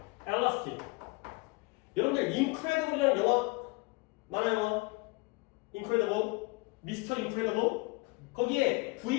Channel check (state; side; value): quieter; right; 26.2 dB